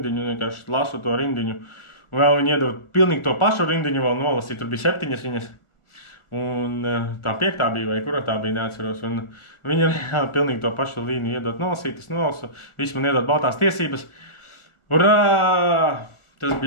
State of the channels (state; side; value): late; right; 1.4 ms